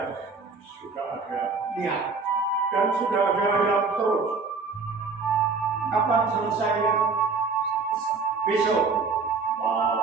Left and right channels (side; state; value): left; quieter; 4.6 dB